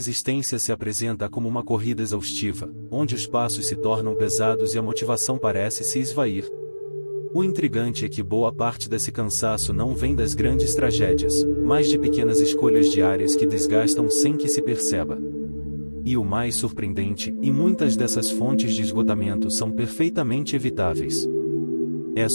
se apresenta como uma corrida exaustiva, onde os passos se tornam pesados e a motivação parece se esvair. O intrigante é que boa parte desse cansaço não vem das grandes tragédias, mas de pequenas escolhas diárias que desgastam sem que se perceba. E o mais surpreendente, e muitas dessas fontes de esgotamento são perfeitamente evitáveis. É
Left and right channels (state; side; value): inverted; both; correlation -1.00